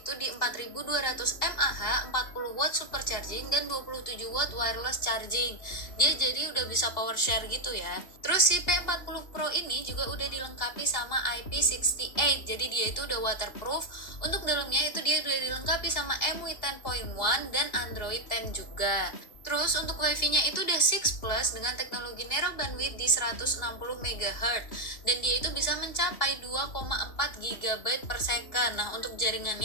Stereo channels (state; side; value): late; right; 2.7 ms